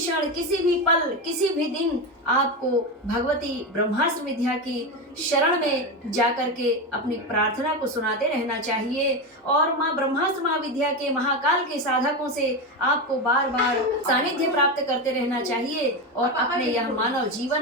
किसी भी पल, किसी भी दिन आपको भगवती ब्रह्मास्त्र विद्या की शरण में जाकर के अपनी प्रार्थना को सुनाते रहना चाहिए और माँ ब्रह्मास्त्र महाविद्या के महाकाल के साधकों से आपको बार बार सानिध्य प्राप्त करते रहना चाहिए और अपने यह मानव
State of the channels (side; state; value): both; normal; correlation 0.16